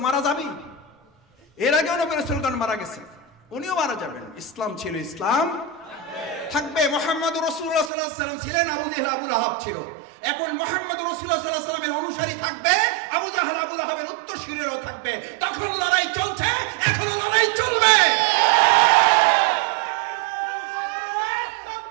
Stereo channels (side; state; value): left; drops out; at 7.9 s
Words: মারা যাবেই, এর আগেও নবী রাসূলগণ মারা গেছে, উনিও মারা যাবেন। ইসলাম ছিল, ইসলাম থাকবে। মুহাম্মদুর রাসূলুল্লাহ সাল্লাল্লাহু আলাইহি ওয়াসাল্লাম ছিলেন, আবু জেহেল আবু লাহাব ছিল। এখন মুহাম্মদুর রাসূলুল্লাহ সাল্লাল্লাহু আলাইহি ওয়াসাল্লামের অনুসারী থাকবে, আবু জাহেল আবু লাহাবের উত্তরসূরিরাও থাকবে। তখন লড়াই চলছে, এখনো লড়াই চলবে।